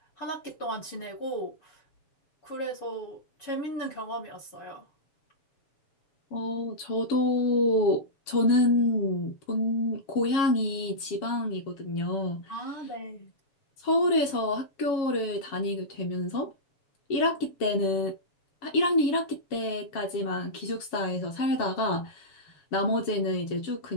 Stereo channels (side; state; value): right; late; 7.3 ms